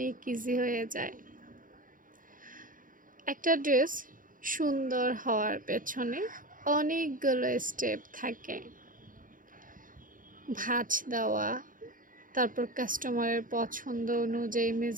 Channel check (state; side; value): late; left; 0.39 ms